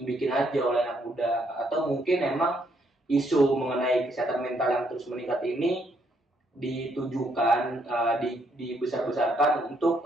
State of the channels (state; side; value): normal; both; correlation 0.72